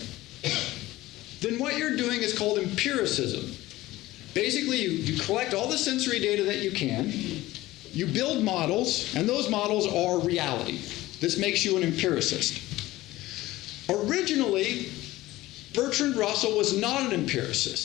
then what you're doing is called empiricism. Basically, you collect all the sensory data that you can, you build models, and those models are reality. This makes you an empiricist. Originally, Bertrand Russell was not an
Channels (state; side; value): quieter; right; 17.4 dB